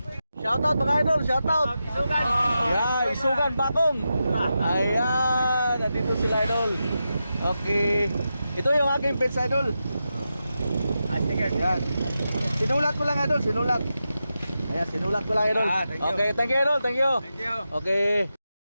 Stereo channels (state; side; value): inverted; both; correlation -0.89